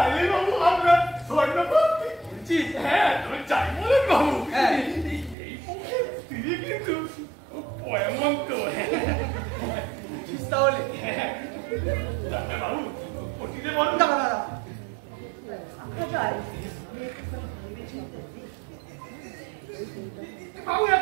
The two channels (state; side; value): drops out; left; at 5.4 s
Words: বাবু আমরা স্বর্ণপতি বলছি হ্যাঁ তুমি চাই বলেন বাবু হ্যাঁ। এই পক্ষে তিনি কিন্তু এমন তো তাহলে ডাক্তার বাবু ওটিতে বলুন দাঁড়া দাঁড়া আমরা যাই বাবু এক